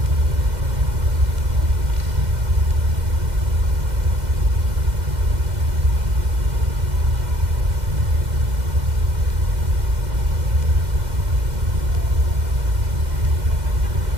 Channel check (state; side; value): late; left; 2.0 ms